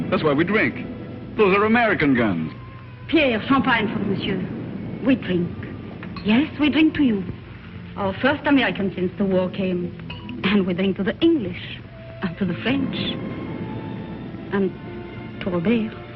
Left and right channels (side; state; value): both; identical; correlation 1.00